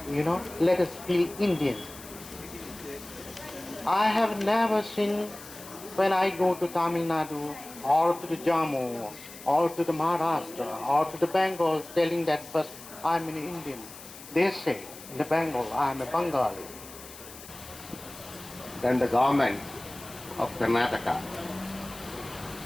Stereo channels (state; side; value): noise; left; hiss, 16 dB below the sound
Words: let us feel Indian. I have never seen when I go to Tamil Nadu or to the Jammu or to the Maharashtra or to the Bengal telling that first I'm an Indian. They say in the Bengal I'm a Bengali. Then the government of Karnataka